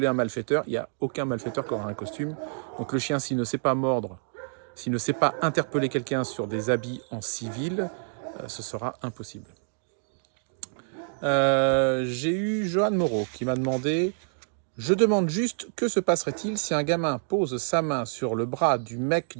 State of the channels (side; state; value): left; silent; digital silence